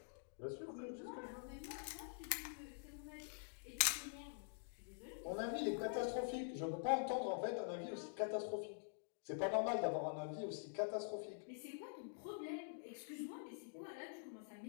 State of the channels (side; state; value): right; silent; digital silence